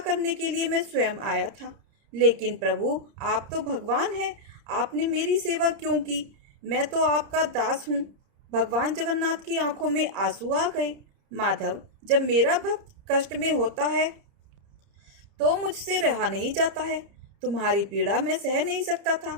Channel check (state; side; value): late; left; 30 ms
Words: के लिए मैं स्वयं आया था। लेकिन प्रभु, आप तो भगवान हैं, आपने मेरी सेवा क्यों की? मैं तो आपका दास हूँ। भगवान जगन्नाथ की आंखों में आंसू आ गए। माधव, जब मेरा भक्त कष्ट में होता है तो मुझसे रहा नहीं जाता है। तुम्हारी पीड़ा मैं सह नहीं सकता था,